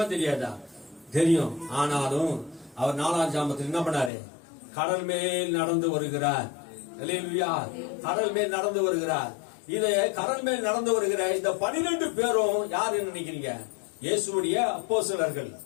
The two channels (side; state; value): right; drops out; at 4.1 s